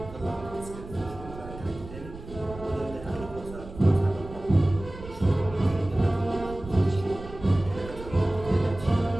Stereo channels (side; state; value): right; noise; rumble, 14 dB below the sound